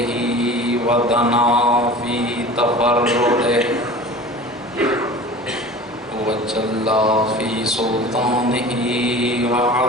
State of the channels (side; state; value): both; normal; correlation 0.39